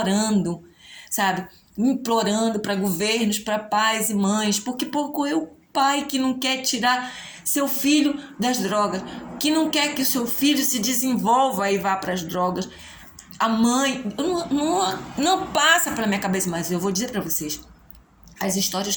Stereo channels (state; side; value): identical; both; correlation 1.00